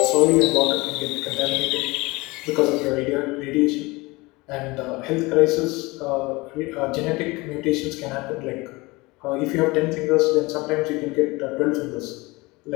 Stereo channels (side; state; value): right; quieter; 23.1 dB